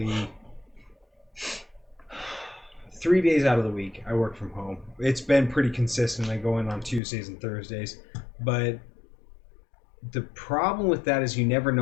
3 days out of the week. I work from home. It's been pretty consistent. I go in on Tuesdays and Thursdays, but the problem with that is you never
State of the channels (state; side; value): drops out; right; at 7.0 s